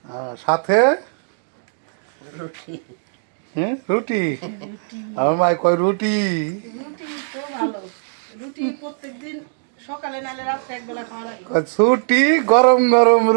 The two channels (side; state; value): left; silent; digital silence